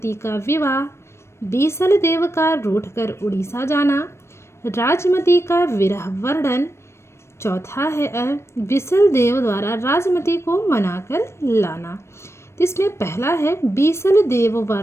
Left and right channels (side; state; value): right; late; 0.13 ms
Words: का विवाह, बीसल देव का रूठकर उड़ीसा जाना, राजमती का विरह वर्णन। चौथा है बीसल देव द्वारा राजमती को मनाकर लाना। इसमें पहला है बीसल देव व